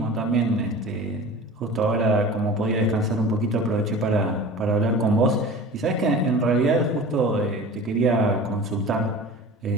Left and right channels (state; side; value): normal; both; correlation 0.37